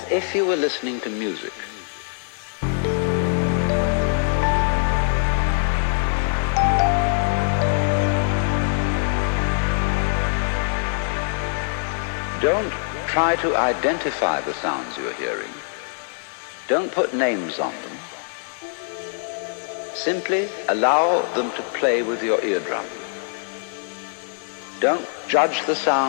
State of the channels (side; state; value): right; silent; 60 dB below the other